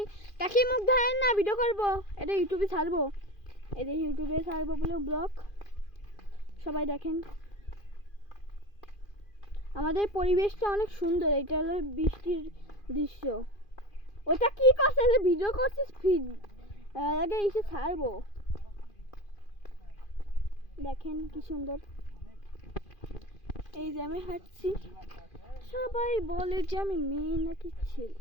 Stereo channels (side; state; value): right; late; 2.4 ms